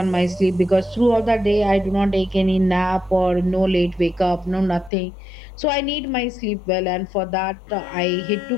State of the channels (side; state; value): right; drops out; at 4.9 s